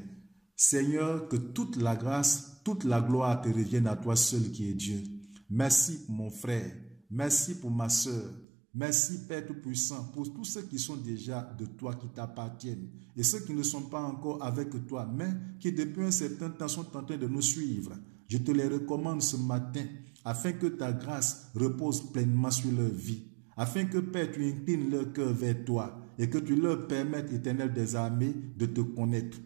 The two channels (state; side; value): drops out; left; at 8.5 s